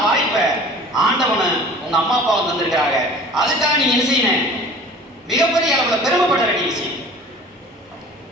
வாய்ப்பை ஆண்டவனு உங்க அம்மா அப்பா வந்து வந்திருக்கிறாங்க. அதுக்காக நீங்க என்ன செய்யணும்? மிகப்பெரிய அளவுல பெருமைப்பட வேண்டிய விஷயம்.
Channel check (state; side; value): normal; both; correlation 0.44